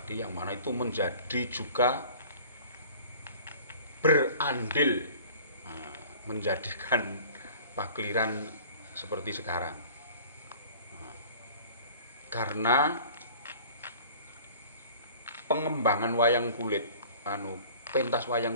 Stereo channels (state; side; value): inverted; both; correlation -0.46